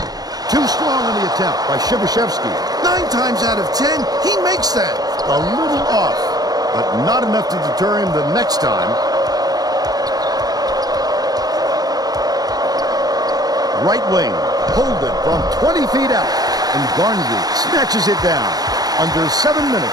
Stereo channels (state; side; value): late; left; 0.19 ms